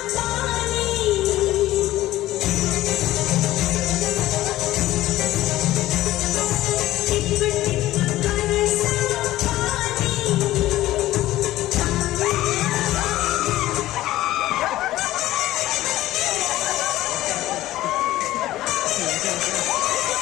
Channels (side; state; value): right; quieter; 15.5 dB